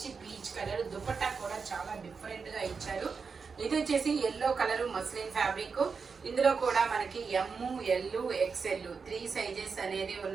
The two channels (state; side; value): quieter; left; 5.3 dB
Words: పీచ్ కలర్, దుపట్టా కూడా చాలా డిఫరెంట్ గా ఇచ్చారు. ఇది వచ్చేసి ఎల్లో కలర్ మస్లిన్ ఫ్యాబ్రిక్. ఇందులో కూడా మనకి ఎమ్ ఎల్ ఎక్స్ఎల్ 3 సైజెస్ అనేది